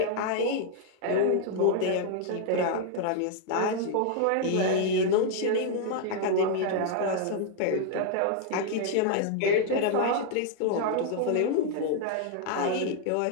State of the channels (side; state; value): both; different; correlation 0.00